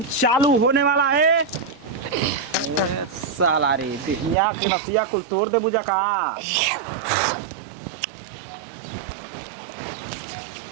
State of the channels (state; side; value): drops out; left; at 4.4 s